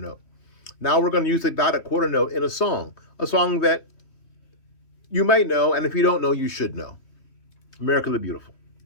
Now we're going to use the dotted quarter note in a song that you might know, and if you don't know, you should know. America the Beautiful.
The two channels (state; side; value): late; right; 3.1 ms